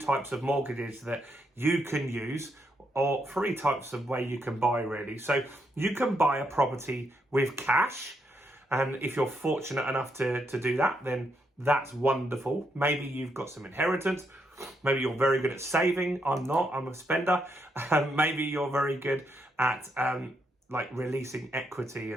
of mortgages that you can use, or three types of way you can buy really. So you can buy a property with cash, and if you're fortunate enough to do that, then that's wonderful. Maybe you've got some inheritance. Maybe you're very good at saving. I'm not, I'm a spender. Maybe you're very good at like releasing equity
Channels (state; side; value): normal; both; correlation 0.78